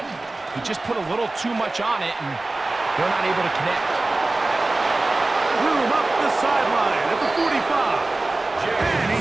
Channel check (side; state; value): left; quieter; 3.1 dB